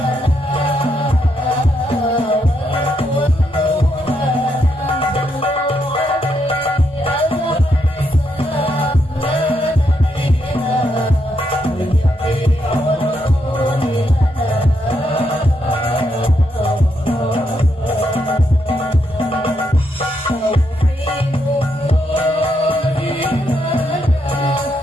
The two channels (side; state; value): both; normal; correlation 0.79